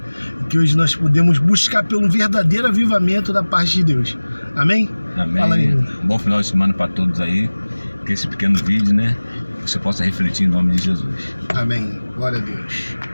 E que hoje nós podemos buscar pelo verdadeiro avivamento da parte de Deus. Amém? Amém. Fala aí. Bom final de semana para todos aí. Que esse pequeno vídeo, né? Você possa refletir em nome de Jesus. Amém. Glória a Deus.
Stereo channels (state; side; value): inverted; both; correlation -1.00